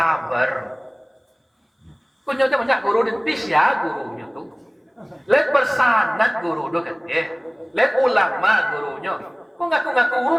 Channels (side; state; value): both; identical; correlation 1.00